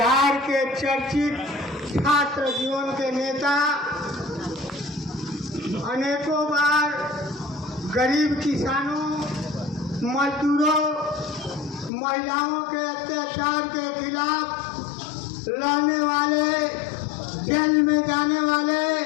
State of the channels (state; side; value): drops out; right; at 11.9 s